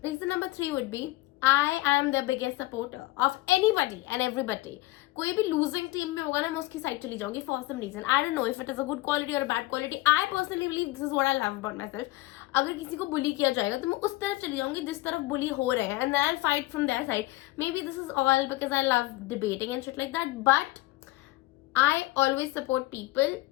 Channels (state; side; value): quieter; right; 19.4 dB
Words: Reason number 3 would be I am the biggest supporter of anybody and everybody. कोई भी losing team में होगा ना, मैं उसकी साइड चली जाऊंगी for some reason. I don't know if it is a good quality or a bad quality. I personally believe this is what I love about myself. अगर किसी को बुली किया जाएगा तो मैं उस तरफ चली जाऊंगी जिस तरफ बुली हो रहे हैं, and then I'll fight from their side. Maybe this is all because I love debating and shit like that, but I always support people